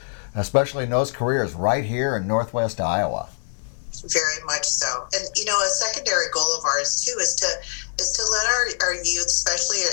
especially in those careers right here in Northwest Iowa. Very much so. And, a secondary goal of ours, too, is to let our youth, especially,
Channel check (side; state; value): right; silent; digital silence